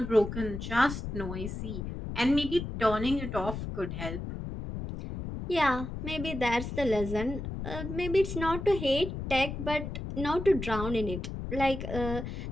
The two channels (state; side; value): noise; left; rumble, 6 dB below the sound